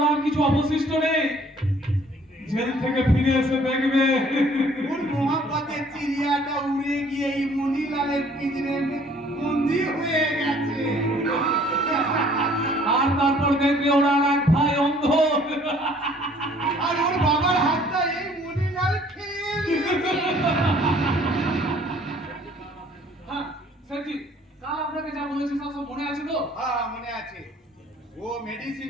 আর কিছু অবশিষ্ট নেই। জেল থেকে ফিরে এসে দেখবে उन मोहब्बतेर चिड़ियाटा उड़े गিয়ে এই মনিলালের পিঞ্জরে বন্দি হয়ে গেছে আর তারপর দেখবে ওরা আর এক ভাই অন্ধ। আর ওর বাবার হাতটা এই মনিলাল খেয়ে নিয়েছে হ্যাঁ স্যারজি, কাল আপনাকে যা বলেছি সব মনে আছে তো? হ্যাঁ মনে আছে ও মেডিসিন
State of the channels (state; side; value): normal; both; correlation 0.57